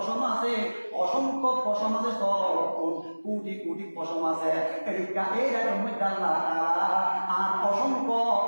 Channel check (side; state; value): both; inverted; correlation -1.00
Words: আছে অসংখ্য পশম আছে সরলতুন কোটি কোটি পশম আছে এই রকম মধ্যে আল্লাহ তাআলা আর অসংখ্য